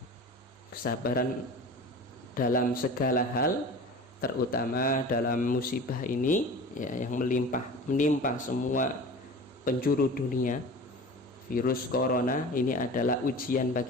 dalam segala hal, terutama dalam musibah ini, ya, yang menimpa semua penjuru dunia. Virus corona ini adalah ujian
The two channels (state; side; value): normal; both; correlation 0.37